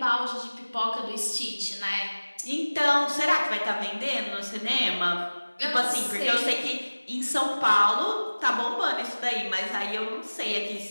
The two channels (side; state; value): both; inverted; correlation -1.00